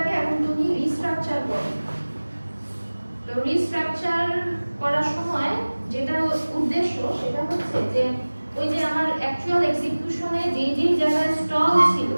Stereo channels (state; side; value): inverted; both; correlation -1.00